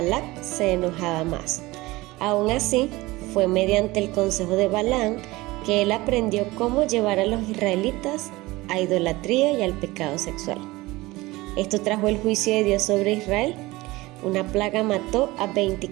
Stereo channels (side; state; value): left; quieter; 20.4 dB